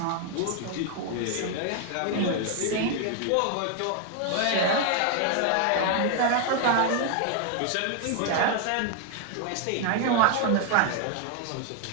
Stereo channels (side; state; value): both; different; correlation 0.00